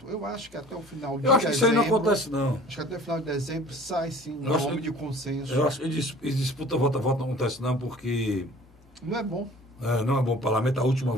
Eu acho que até o final de dezembro... Eu acho que isso aí não acontece, não. Acho que até o final de dezembro sai, sim, um nome de consenso. Eu acho que disputa voto a voto não acontece, não, porque... Não é bom. Não é bom para o parlamento. A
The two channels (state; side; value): normal; both; correlation 0.47